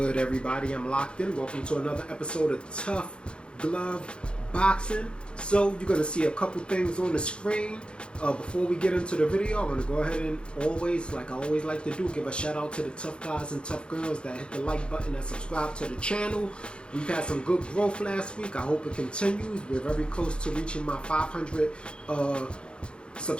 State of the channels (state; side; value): late; right; 0.055 ms